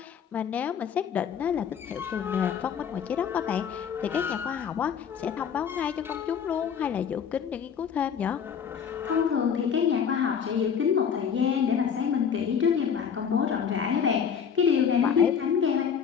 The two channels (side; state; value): right; quieter; 7.4 dB